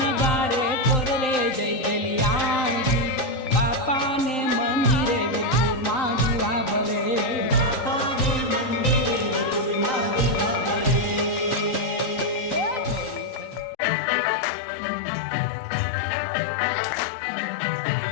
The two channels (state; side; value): late; right; 3.9 ms